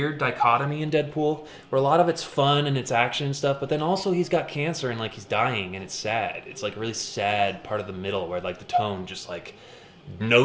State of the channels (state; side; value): identical; both; correlation 1.00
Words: dichotomy in Deadpool where a lot of it's fun and it's action and stuff, but then also he's got cancer and he's dying and it's sad. It's a really sad part of the middle where the tone just